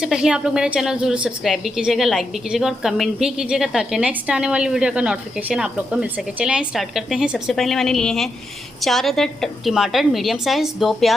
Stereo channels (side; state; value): both; normal; correlation 0.84